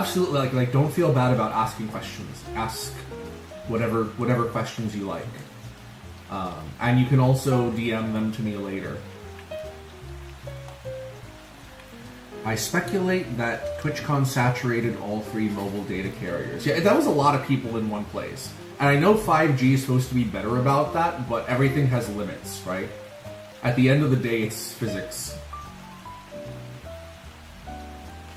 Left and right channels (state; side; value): identical; both; correlation 1.00